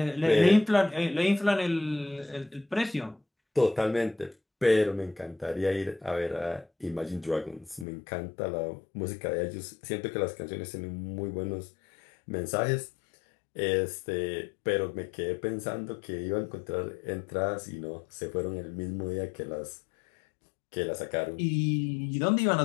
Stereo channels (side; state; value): right; drops out; at 7.9 s